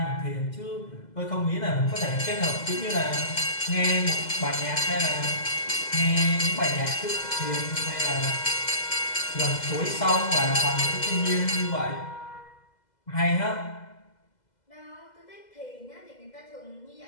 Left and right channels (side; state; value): right; late; 2.0 ms